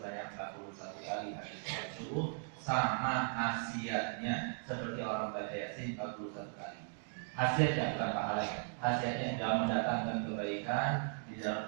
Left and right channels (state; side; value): silent; left; 53 dB below the other